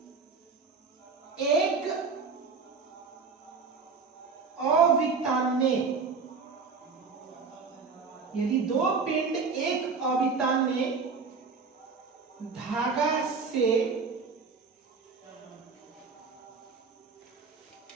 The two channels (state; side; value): quieter; left; 4.9 dB